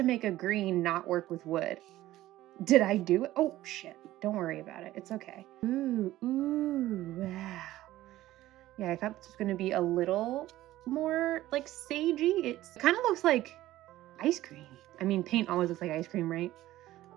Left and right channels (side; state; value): left; quieter; 15.4 dB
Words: make a green not work with wood. Did I do it? Oh shit. Don't worry about it. It's okay. Ooh, wow. Yeah, I thought this was gonna be a little more like sagey. It kind of looks like ice cream. I mean, paint always looks like ice cream, right?